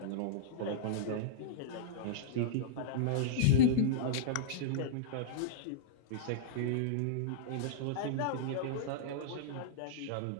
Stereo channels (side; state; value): both; different; correlation -0.03